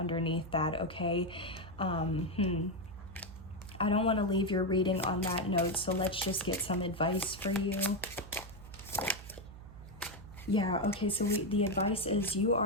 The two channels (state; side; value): noise; right; hum, 16 dB below the sound